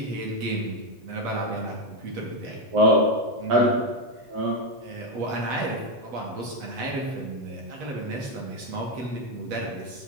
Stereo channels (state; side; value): late; left; 8.2 ms